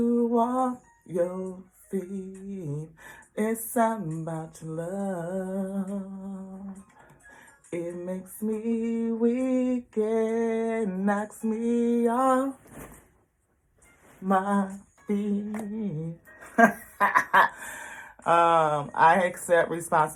off your feet. It's something about your love. It makes me weak and knocks me off my feet. I accept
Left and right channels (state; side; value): identical; both; correlation 1.00